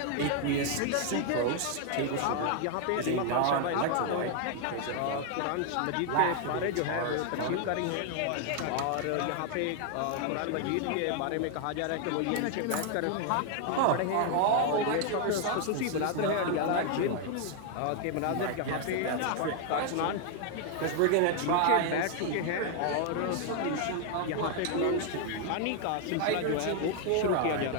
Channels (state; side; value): different; both; correlation 0.00